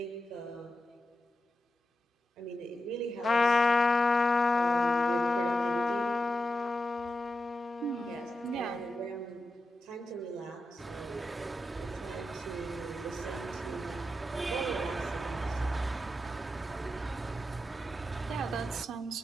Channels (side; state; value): both; normal; correlation 0.89